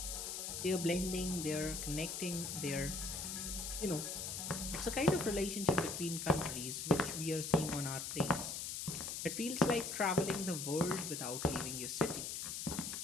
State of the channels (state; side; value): noise; left; hiss, 4 dB below the sound